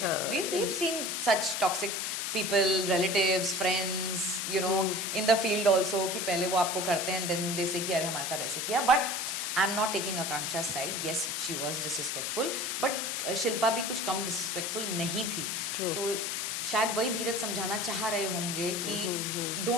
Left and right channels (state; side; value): noise; left; hiss, 1 dB below the sound